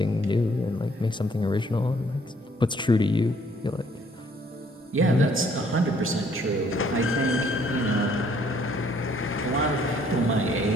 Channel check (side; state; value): both; normal; correlation 0.63